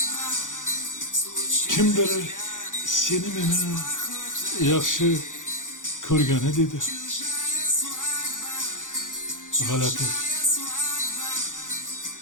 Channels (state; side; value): late; right; 0.87 ms